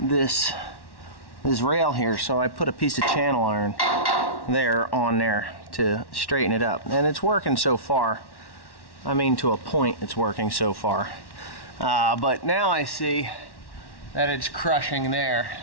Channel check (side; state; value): right; late; 1.1 ms